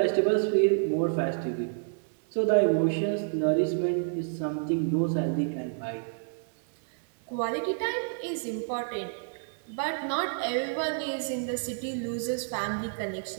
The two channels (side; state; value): left; silent; digital silence